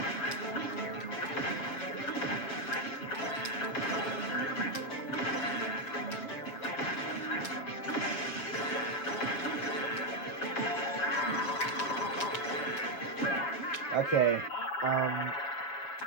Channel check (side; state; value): right; late; 6.7 ms